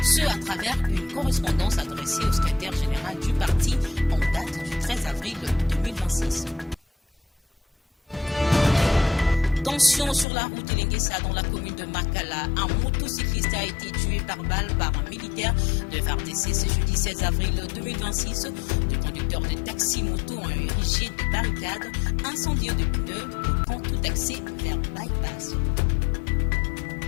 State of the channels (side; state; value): right; drops out; at 10.2 s